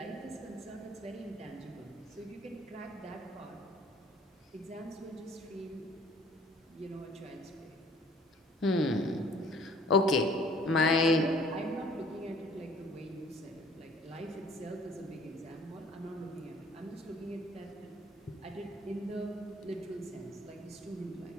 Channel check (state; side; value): normal; both; correlation 0.55